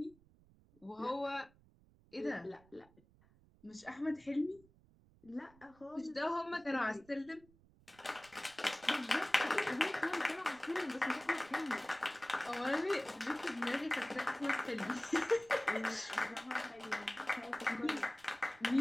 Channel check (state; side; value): noise; right; rumble, 28 dB below the sound